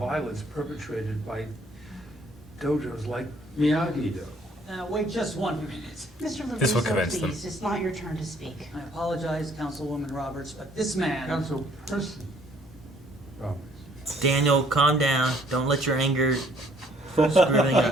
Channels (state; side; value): normal; both; correlation 0.62